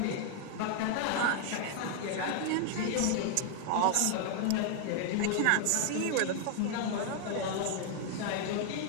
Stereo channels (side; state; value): both; different; correlation 0.00